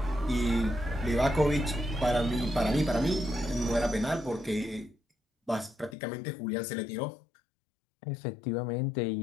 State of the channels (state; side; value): drops out; right; at 6.0 s